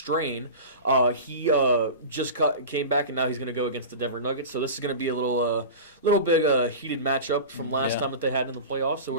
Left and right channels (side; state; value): both; inverted; correlation -0.30